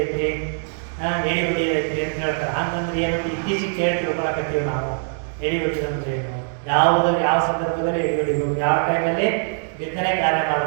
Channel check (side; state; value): left; silent; digital silence